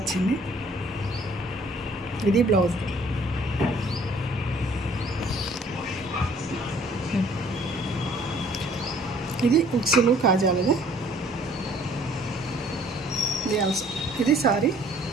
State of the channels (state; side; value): normal; both; correlation 0.58